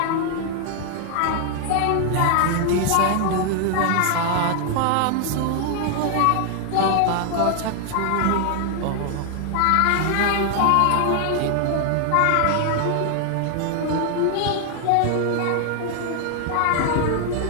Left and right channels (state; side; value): different; both; correlation 0.00